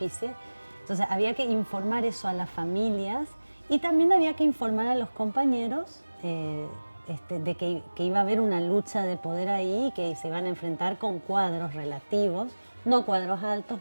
Entonces había que informar eso a las familias y también había que informar a los compañeros de que iba a haber una lucha de poder ahí y que se iban a enfrentar con cuadros relativos, no cuadros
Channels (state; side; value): inverted; both; correlation -1.00